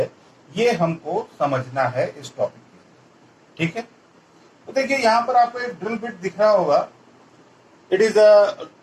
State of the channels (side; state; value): both; identical; correlation 1.00